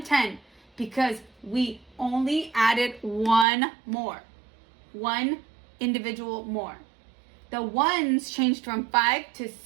because we only added one more. One individual more. The 1s changed from 5 to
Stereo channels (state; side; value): drops out; left; at 3.5 s